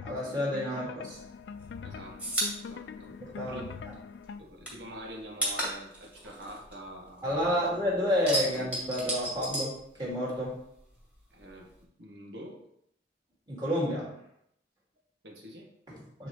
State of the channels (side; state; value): both; normal; correlation 0.34